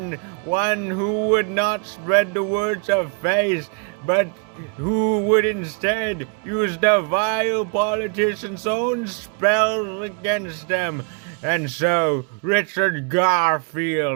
one who would not spread the words of faith, but who would instead use the vile politician's own spells against them. And so Richard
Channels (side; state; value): left; quieter; 36.4 dB